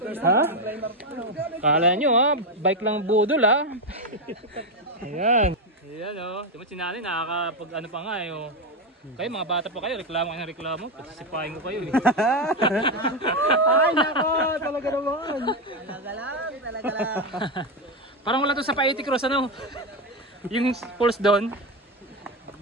Kala nyo ha, bike lang budol ha. Ayan. Ayan o, ito mo sinali, nakakapag ano pa nga eh o. Kayo mga bata pa kayo, reklamo kayo ng reklamo, pasisipahin ko kayo eh. Ay nako, talaga naman. Talaga lang. Parang wala to sa Paiti Cross ano. Yung falls doon.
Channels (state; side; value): normal; both; correlation 0.10